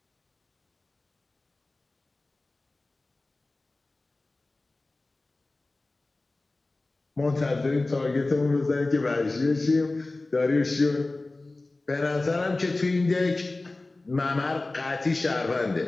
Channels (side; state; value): right; quieter; 3.1 dB